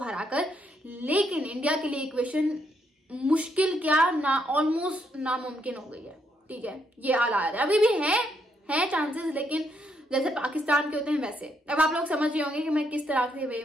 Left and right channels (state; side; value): normal; both; correlation 0.75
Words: लेकिन इंडिया के लिए इक्वेशन मुश्किल क्या ना ऑलमोस्ट नामुमकिन हो गई है, ठीक है, ये हालात है। अभी भी है चांसेस, लेकिन जैसे पाकिस्तान के होते हैं वैसे। अब आप लोग समझ रहे होंगे कि मैं किस तरह के वे